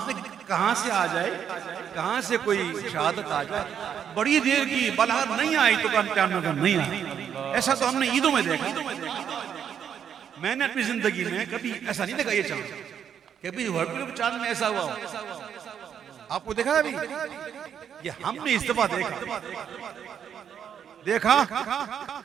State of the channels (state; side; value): quieter; left; 8.4 dB